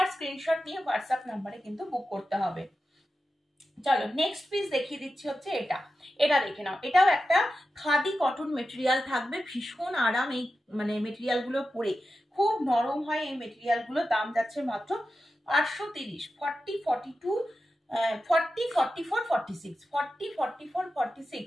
স্ক্রিনশট নিয়ে হোয়াটসঅ্যাপ নাম্বারে কিন্তু বুক করতে হবে। চলো নেক্সট পিস দেখিয়ে দিচ্ছি হচ্ছে এটা। এটা দেখে নাও, এটাও একটা খাদি কটন মেটেরিয়াল থাকবে। ভীষণ আরাম এই মানে মেটেরিয়াল গুলো পরে, খুব নরম হয় এই মেটেরিয়াল গুলো। দাম যাচ্ছে মাত্র 830। 40-42 40-44-46,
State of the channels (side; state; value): both; normal; correlation 0.92